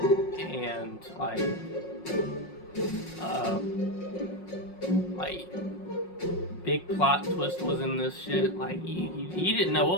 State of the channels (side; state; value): right; late; 5.5 ms